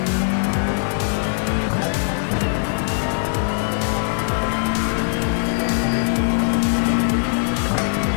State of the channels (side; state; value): right; silent; digital silence